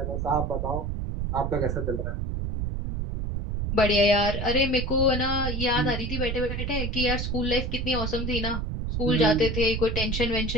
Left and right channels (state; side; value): noise; right; rumble, 2 dB below the sound